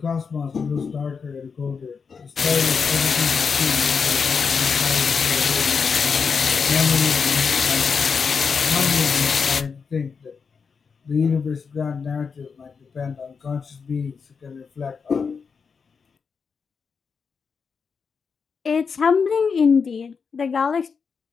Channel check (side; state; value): right; quieter; 5.7 dB